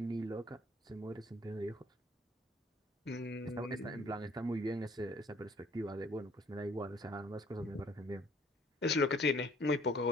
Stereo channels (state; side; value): normal; both; correlation 0.59